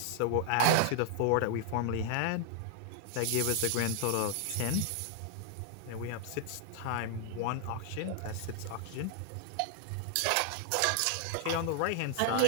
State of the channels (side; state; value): both; different; correlation 0.00